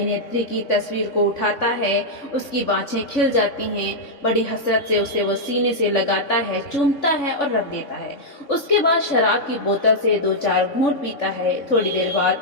की तस्वीर को उठाता है। उसकी बाँछें खिल जाती हैं। बड़ी हसरत से उसे वो सीने से लगाता है, चूमता है और रख देता है। उसके बाद शराब की बोतल से 2-4 घूंट पीता है। थोड़ी देर बाद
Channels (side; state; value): right; late; 3.5 ms